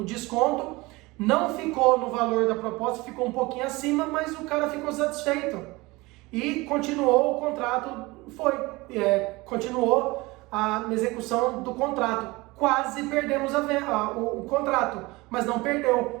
desconto, não ficou no valor da proposta, ficou um pouquinho acima, mas o cara ficou satisfeito. E continuou o contrato, continuou a execução do contrato. Quase perdemos o contrato, mas não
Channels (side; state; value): left; quieter; 22.5 dB